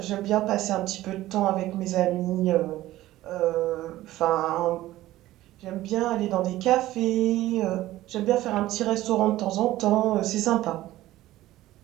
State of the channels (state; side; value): quieter; left; 15.7 dB